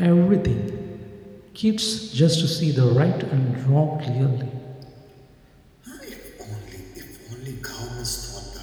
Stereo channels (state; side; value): identical; both; correlation 1.00